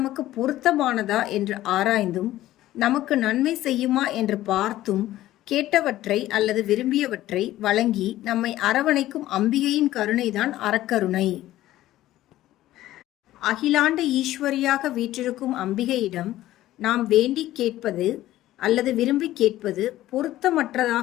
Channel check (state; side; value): quieter; right; 14.7 dB